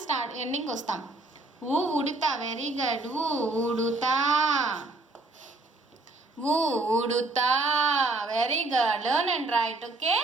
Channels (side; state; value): left; quieter; 3.0 dB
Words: ఎండింగ్కి వస్తాం ఉడుతా వెరీ గుడ్ ఉడుతా ఉడుతా very good learn and write okay